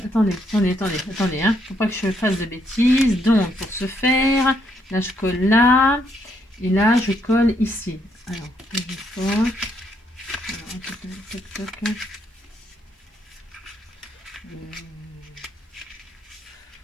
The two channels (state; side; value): normal; both; correlation 0.74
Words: Attendez, hein. Faut pas que je fasse de bêtises. Donc, pour ce faire, là, je colle là. Et là, je colle ici. Alors, je colle.